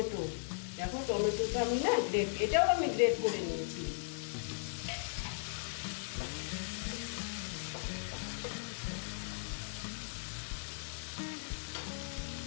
দেখো টমেটোটা আমি না এটাও আমি গ্রেট করে নিয়েছি।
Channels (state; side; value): silent; right; 53 dB below the other